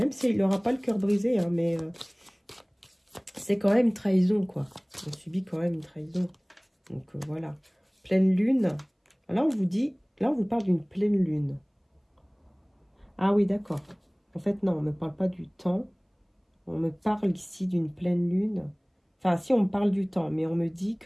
s'il n'aura pas le cœur brisé, hein, mais c'est quand même une trahison, quoi. On subit quand même une trahison. Donc voilà. Pleine lune. Là, on vous dit, là, on vous parle d'une pleine lune. Ah oui, d'accord. En fait, non, on ne me parle pas du temps. On me parle ici d'une pleine lune. Enfin, si, on me parle du temps, mais on me dit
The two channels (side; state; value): both; identical; correlation 1.00